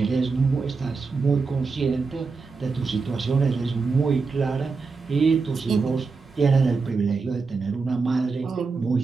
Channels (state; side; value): quieter; left; 4.5 dB